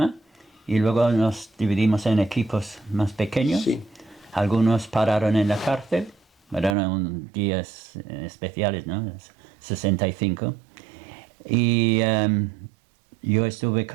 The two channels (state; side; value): drops out; left; at 6.8 s